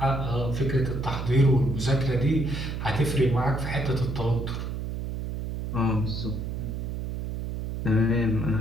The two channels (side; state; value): right; noise; hum, 4 dB below the sound